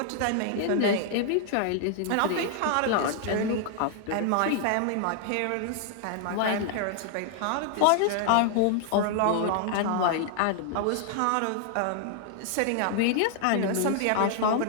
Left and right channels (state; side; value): different; both; correlation 0.00